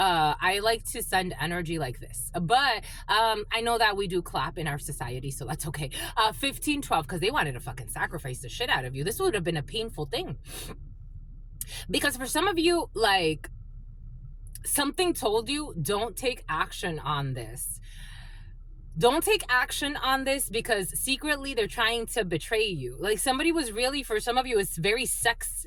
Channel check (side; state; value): both; identical; correlation 1.00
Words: like to send energy like this, but I know that we do clap in our society, so that's okay. 1512, because they wanted to fucking sacrifice the shit out of you. This would have been a painful thing. Because for some of you, like, something told you, don't take action on this. Don't take action on this because secretly they're trying to betray you. Like, somebody was really, for some of you, it's very